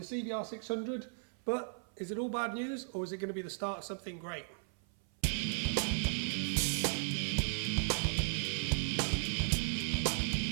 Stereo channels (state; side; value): silent; left; 54 dB below the other